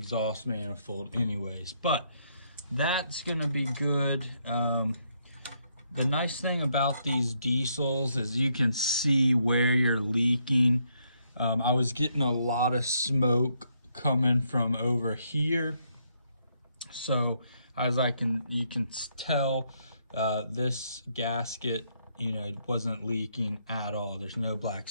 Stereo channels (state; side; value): inverted; both; correlation -0.74